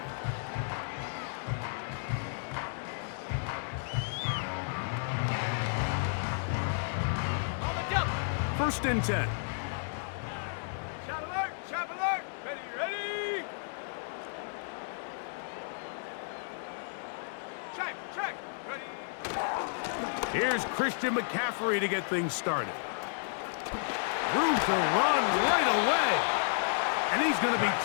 First and 10. Shot alert! Shot alert! Ready, ready! Check! Ready! Here's Christian McCaffrey to get things started. Room to run right away. And he's going to be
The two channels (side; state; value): right; silent; 56 dB below the other